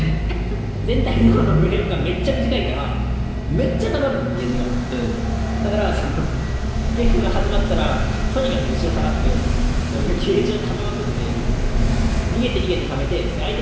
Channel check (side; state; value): both; identical; correlation 1.00